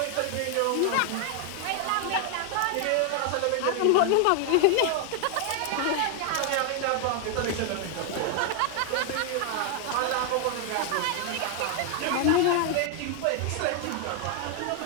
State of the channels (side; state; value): both; different; correlation 0.00